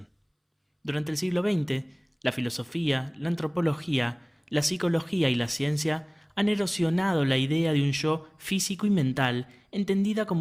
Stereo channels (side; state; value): both; identical; correlation 1.00